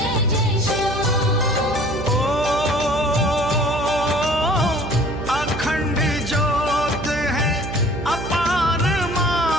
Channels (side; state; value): right; noise; hum, 8 dB below the sound